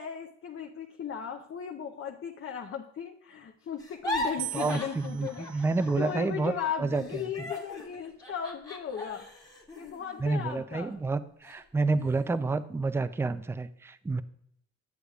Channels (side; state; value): both; normal; correlation 0.67